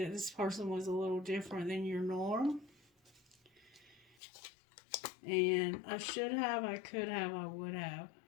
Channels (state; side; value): drops out; right; at 4.2 s